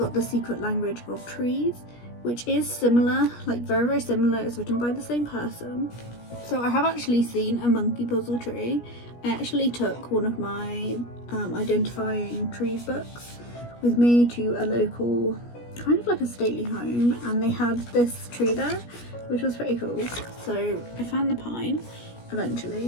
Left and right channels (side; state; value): right; late; 17 ms